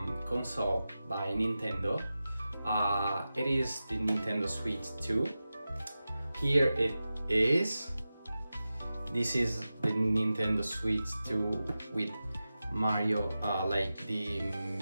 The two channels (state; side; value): inverted; both; correlation -0.94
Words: console by Nintendo. It is the Nintendo Switch 2. Here it is. This is the Nintendo Switch 2 with Mario, like the